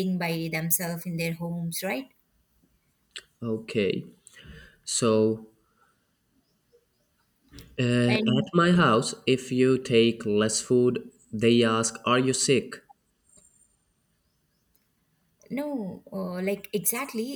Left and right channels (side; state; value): both; identical; correlation 1.00